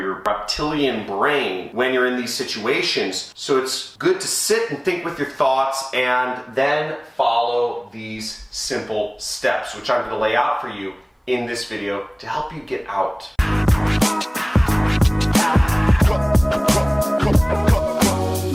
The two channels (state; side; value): identical; both; correlation 1.00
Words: reptilian brain when you're in these situations. So it's good to sit and think with your thoughts and then follow these simple steps, which I'm going to lay out for you in this video to help you get out.